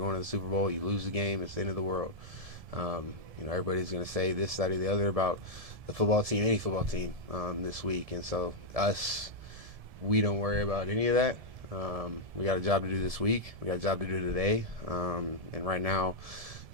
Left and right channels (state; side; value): late; left; 1.7 ms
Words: to the Super Bowl. You lose the game, it's the end of the world. You know, everybody's going to say this, that, or the other about the football team, any football team, this week. And so we don't worry about any of that. We got a job to do this week. We got a job to do today. And right now,